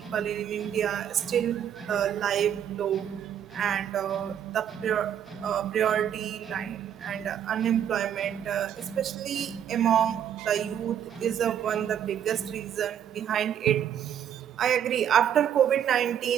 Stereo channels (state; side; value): quieter; left; 9.5 dB